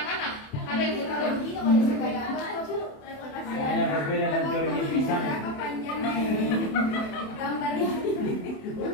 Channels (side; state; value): right; late; 27 ms